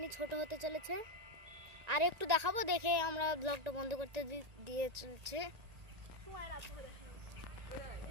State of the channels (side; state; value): left; late; 1.9 ms